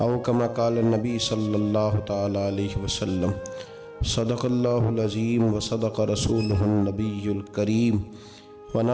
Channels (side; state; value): both; identical; correlation 1.00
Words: کما قال النبی صلی اللہ تعالی علیہ وسلم صدق اللہ العظیم و صدق رسولہ النبی الکریم